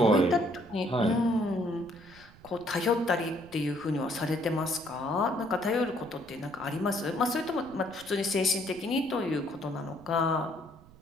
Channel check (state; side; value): noise; right; rumble, 23 dB below the sound